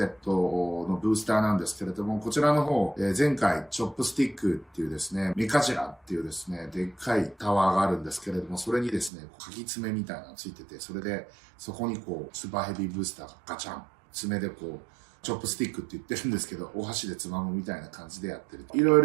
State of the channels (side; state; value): left; drops out; at 9.1 s